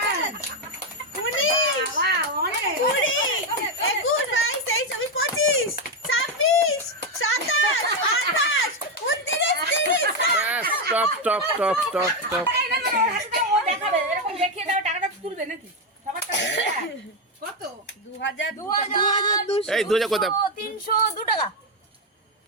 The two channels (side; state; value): both; normal; correlation 0.06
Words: Top top top top top. কত? 2000 এই 2000 কত? 302 টাকা।